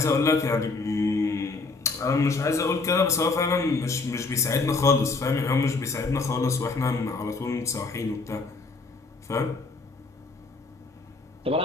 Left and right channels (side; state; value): right; quieter; 3.8 dB